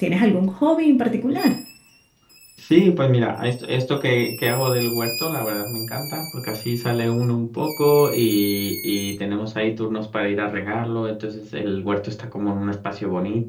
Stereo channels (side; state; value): both; identical; correlation 1.00